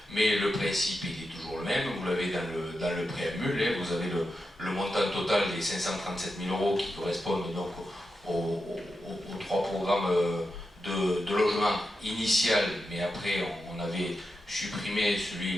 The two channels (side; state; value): both; normal; correlation 0.89